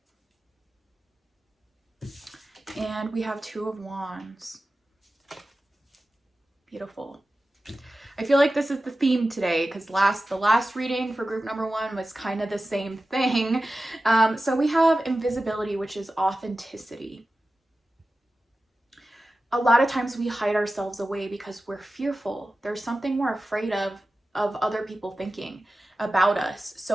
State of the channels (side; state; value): both; normal; correlation 0.95